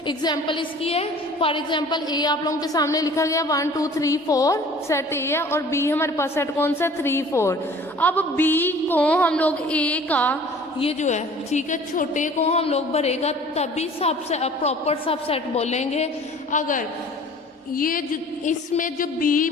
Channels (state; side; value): normal; both; correlation 0.48